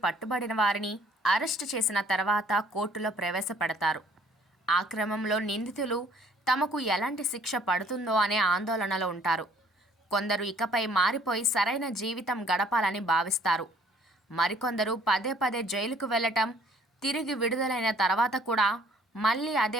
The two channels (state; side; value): normal; both; correlation 0.58